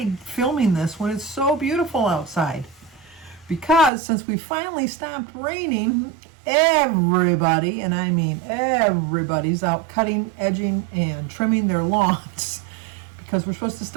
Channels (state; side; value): drops out; left; at 3.9 s